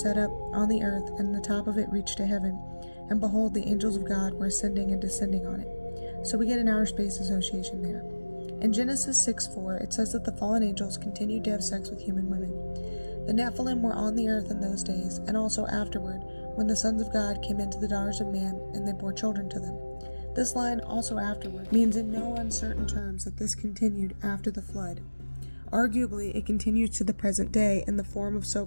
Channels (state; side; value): inverted; both; correlation -1.00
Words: up on the earth, and the top of it reached to heaven, and behold, the angels of God were ascending and descending on it. So we get an outer space association there. In Genesis 6:4, it says that the fallen angels continued to have sex with human women. The Nephilim were on the earth in those days, and also afterward, when the sons of God came into the daughters of man, and they bore children to them. This line, also afterward, means in no uncertain terms that this continued after the flood. Arguably, it continues to the present day in the form of